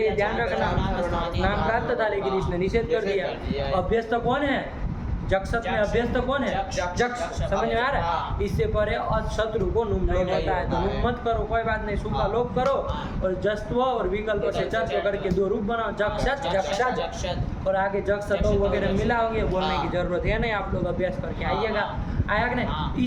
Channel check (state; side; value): identical; both; correlation 1.00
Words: ध्यान रखना, नाम प्राप्त था लेकिन इसने निषेध कर दिया। अभ्यस्त कौन है? जक्षत में अभ्यस्त कौन है? जक्ष। समझ में आ रहा है? इससे परे शत्रु को नुम नहीं होता है, तो नुम मत करो, कोई बात नहीं, सुखा लोप करो और जस्त्व और विकल्प से चर्च करके 2 रूप बनाओ, जक्षत जक्षत, और आगे जक्षत वगैरह मिला होंगे, बोलने की जरूरत है नहीं, आप लोग अभ्यास करके आइएगा। आया कि नहीं?